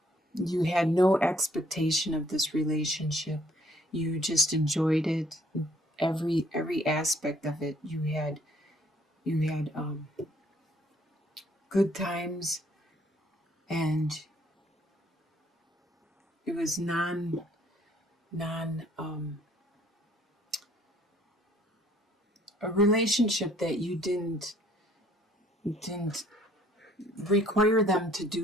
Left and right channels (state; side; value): normal; both; correlation 0.63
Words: you had no expectation of this relationship. You just enjoyed it. Every aspect of it. You had good times, and it was non a relationship that you didn't require them to